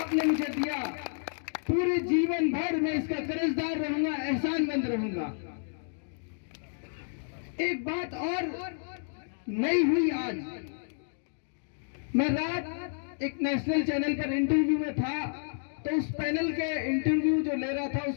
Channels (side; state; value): right; silent; digital silence